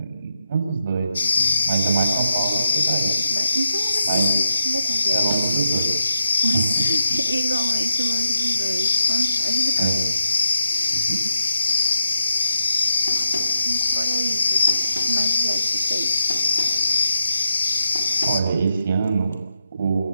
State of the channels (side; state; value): both; inverted; correlation -0.83